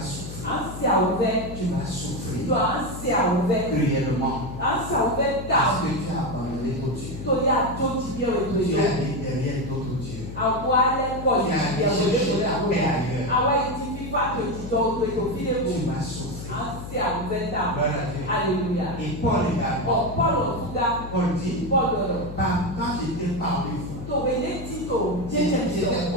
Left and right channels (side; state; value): left; noise; hum, 10 dB below the sound